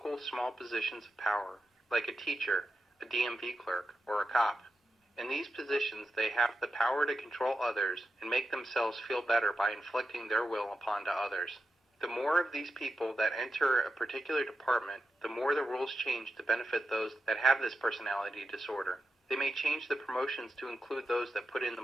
small positions of power, like a teacher, a DMV clerk, or a cop. In these positions, they have the power to control others and make themselves feel better by inflicting their will upon others. The more of these people that enter a particular department, the more the rules change to benefit those that have this personality disorder. They may change the promotions to include those that put in the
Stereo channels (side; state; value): both; normal; correlation 0.89